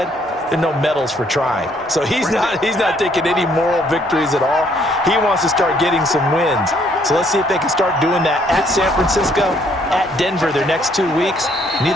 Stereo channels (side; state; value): both; normal; correlation 0.66